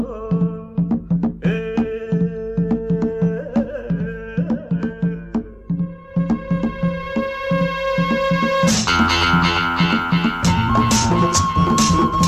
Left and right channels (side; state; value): both; identical; correlation 1.00